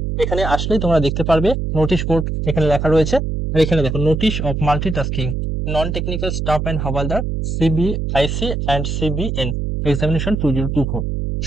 এখানে আসলেই তোমরা দেখতে পারবে নোটিশ বোর্ড এখানে লেখা রয়েছে। আর এখানে দেখো, notice of multitasking non technical staff and havaldar CBIC and CBN examination 2024।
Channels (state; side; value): noise; right; hum, 2 dB below the sound